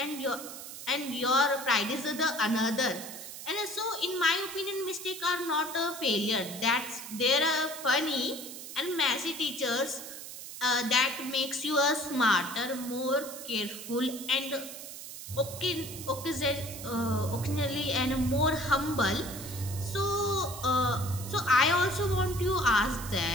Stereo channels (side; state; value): right; noise; hiss, 11 dB below the sound